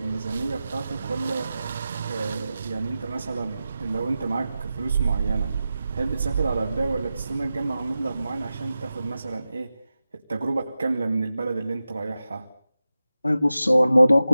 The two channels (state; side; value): inverted; both; correlation -0.94